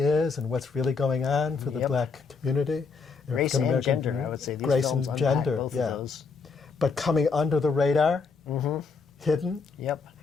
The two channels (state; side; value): quieter; right; 4.9 dB